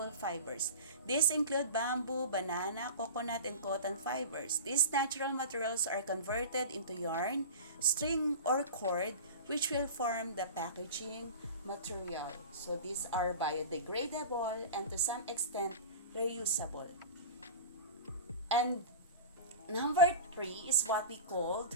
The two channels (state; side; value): inverted; both; correlation -0.32